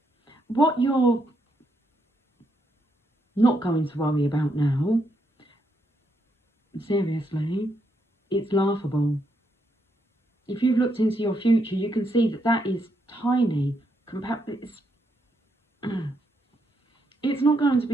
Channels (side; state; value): both; normal; correlation 0.78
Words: what you're not going to worry about now, seriously, it's laughable. If you've looked into your future, you can see that that is tiny. It's not going to